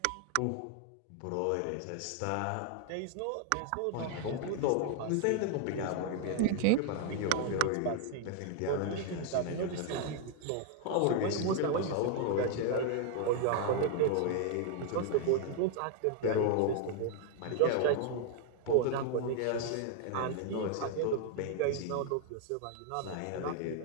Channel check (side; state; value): both; different; correlation 0.00